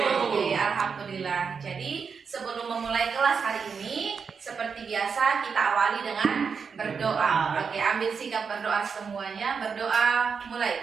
Oke, alhamdulillah. Jadi sebelum memulai kelas hari ini, seperti biasa kita awali dengan berdoa. Oke, ambil sikap berdoa semuanya. Berdoa,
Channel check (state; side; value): quieter; left; 5.9 dB